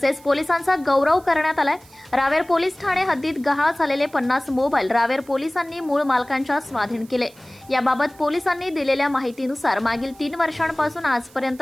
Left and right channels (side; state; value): right; noise; hiss, 26 dB below the sound